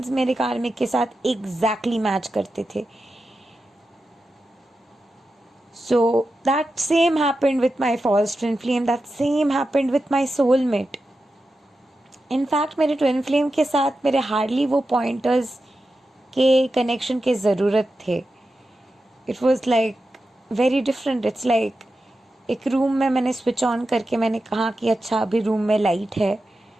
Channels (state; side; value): normal; both; correlation 0.91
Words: मेरे कार्मिक के साथ एग्जैक्टली मैच करते थे। So that same happened with my false twin flame, that same happened with my soulmate. In fact मेरे ट्विन फ्लेम के साथ मेरे हार्डली वो पॉइंटर्स के कनेक्शन के ज़रूरत थे। It was like very different. It's like एक रूम में मैंने स्विच ऑन करके मैंने कहा कि अच्छा अभी रूम में लाइट है,